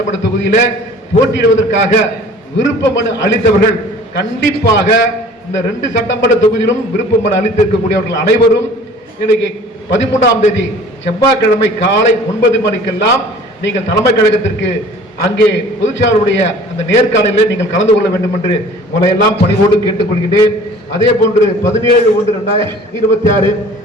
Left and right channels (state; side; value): normal; both; correlation 0.48